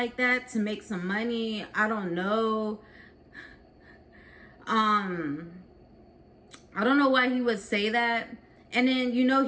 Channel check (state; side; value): identical; both; correlation 1.00